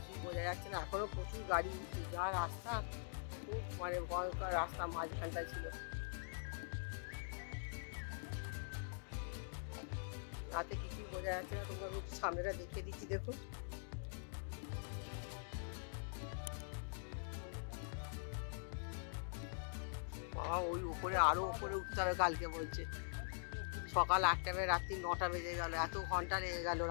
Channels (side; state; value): right; silent; digital silence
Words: বোঝা যাচ্ছে না। এখনও প্রচুর গাড়ি উঠছে। যা রাস্তা, খুব মানে ভয়ঙ্কর রাস্তা মাঝখানটা ছিল। রাতে কিছুই বোঝা যাচ্ছে না। তোমরা একটু সামনেটা দেখিয়ে দিচ্ছি দেখুন। বাবা ওই উপরে আরো উপরে উঠতে হবে কালকে বলছে। সকাল 8টা বেজে রাত্রি 9টা বেজে গেল, এত ঘন্টা লেগে গেল